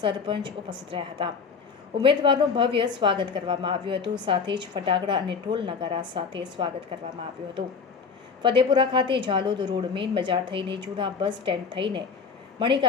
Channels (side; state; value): right; quieter; 5.4 dB